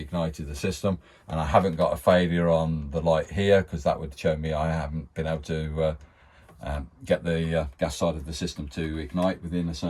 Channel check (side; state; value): both; identical; correlation 1.00